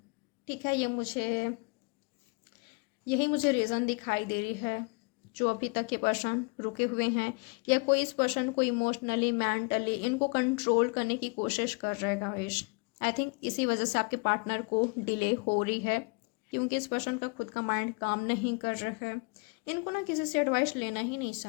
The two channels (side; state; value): right; quieter; 31.6 dB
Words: ठीक है, यही मुझे रीज़न दिखाई दे रही है जो अभी तक ये पर्सन रुके हुए हैं, या कोई इस पर्सन को इमोशनली मेंटली इनको कंट्रोल करने की कोशिश कर रहे हैं गाइस। आई थिंक इसी वजह से आपके पार्टनर को डिले हो रही है, क्योंकि इस पर्सन का खुद का माइंड काम नहीं कर रहा है। इनको ना किसी से एडवाइस लेना ही नहीं